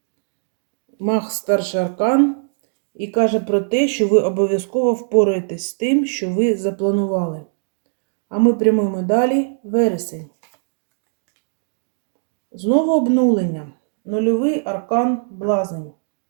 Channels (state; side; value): silent; left; digital silence